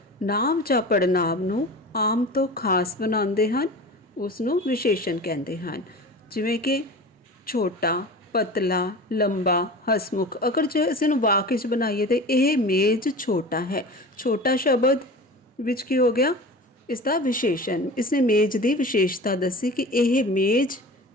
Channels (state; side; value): normal; both; correlation 0.35